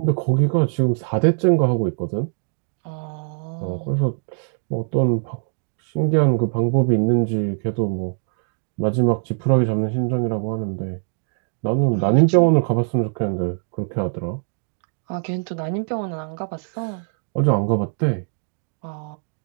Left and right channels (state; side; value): silent; left; digital silence